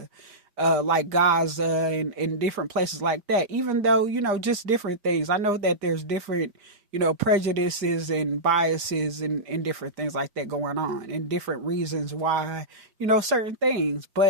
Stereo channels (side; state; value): left; late; 5.0 ms